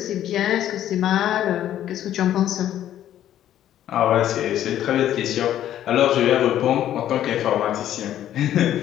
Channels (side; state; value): right; quieter; 11.7 dB